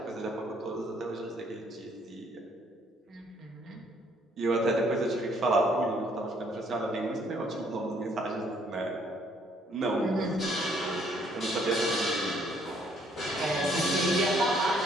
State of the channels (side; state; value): both; normal; correlation 0.65